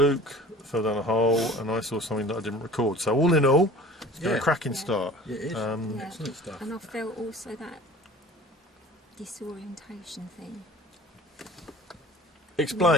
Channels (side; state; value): both; normal; correlation 0.45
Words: fell down a hole, and I saw something that I didn't record. So, all in all, it's been a cracking start. Yeah, it is. Excellent stuff. And I felt also that disorientation thing.